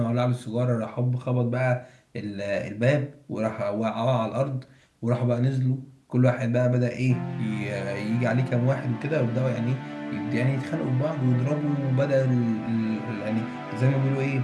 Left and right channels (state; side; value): identical; both; correlation 1.00